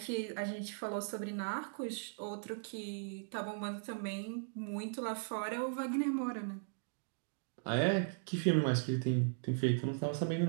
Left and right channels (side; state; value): left; silent; digital silence